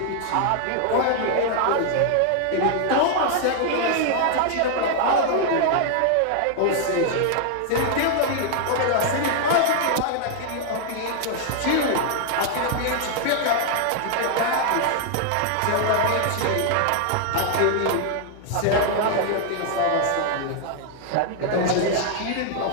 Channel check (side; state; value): both; different; correlation 0.00